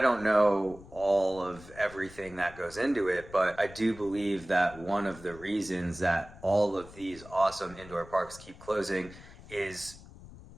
know all of everything that goes into it, but I do believe that one of the reasons that all of these awesome indoor parks keep closing is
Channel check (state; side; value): noise; left; rumble, 19 dB below the sound